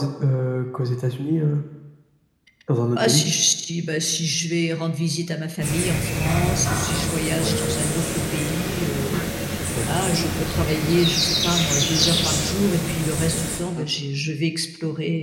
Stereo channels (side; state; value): both; identical; correlation 1.00